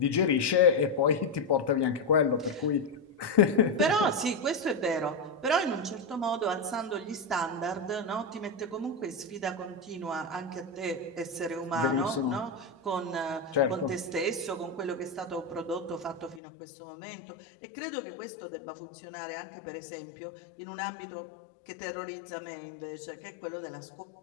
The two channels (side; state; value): right; drops out; at 16.4 s